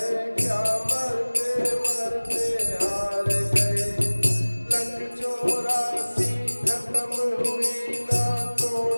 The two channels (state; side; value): inverted; both; correlation -1.00